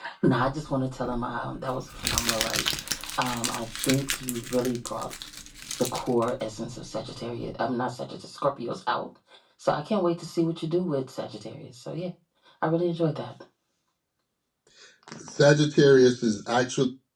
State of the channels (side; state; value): both; identical; correlation 1.00